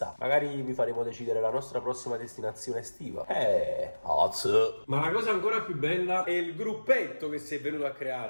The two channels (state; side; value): inverted; both; correlation -1.00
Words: magari vi faremo decidere la nostra prossima destinazione estiva. Ma la cosa ancora più bella è il gruppetto che si è venuto a